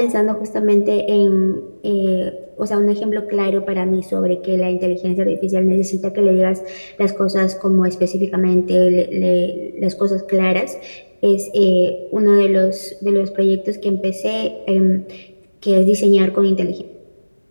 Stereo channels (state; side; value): inverted; both; correlation -1.00